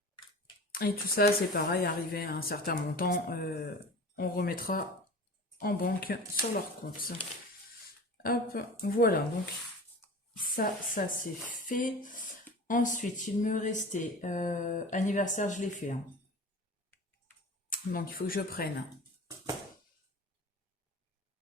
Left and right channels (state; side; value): normal; both; correlation 0.37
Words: Et tout ça, c'est pareil, arrivé à un certain montant, on remettra en banque sur leur compte. Hop, voilà, donc ça c'est fait. Ensuite, il me restait anniversaire, je l'ai fait, hein. Donc il faut que je prenne.